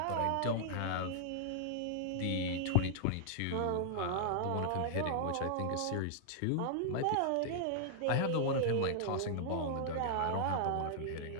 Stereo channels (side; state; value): both; different; correlation -0.01